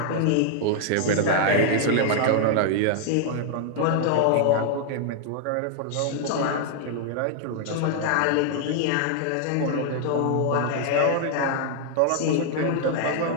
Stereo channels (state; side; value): different; both; correlation 0.00